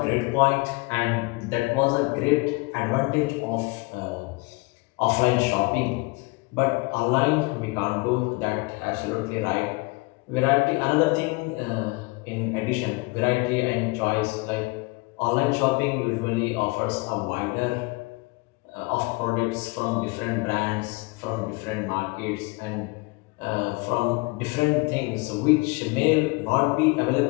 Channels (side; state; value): right; quieter; 25.9 dB